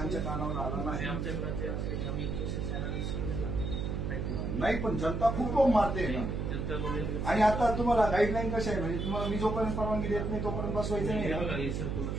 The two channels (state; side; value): noise; right; hum, 2 dB below the sound